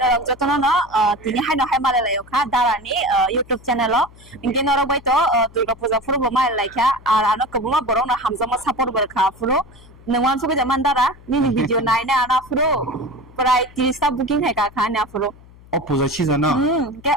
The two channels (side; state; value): left; noise; hum, 23 dB below the sound